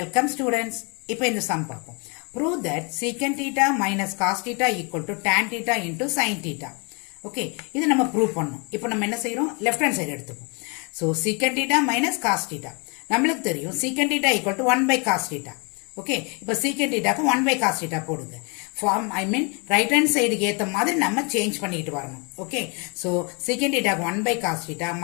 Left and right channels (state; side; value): quieter; right; 32.8 dB